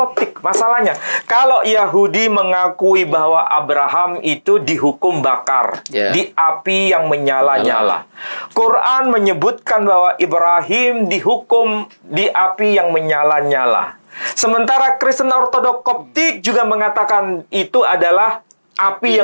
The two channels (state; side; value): inverted; both; correlation -1.00